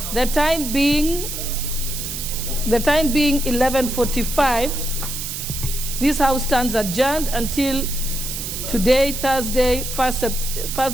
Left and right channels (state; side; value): noise; right; hiss, 6 dB below the sound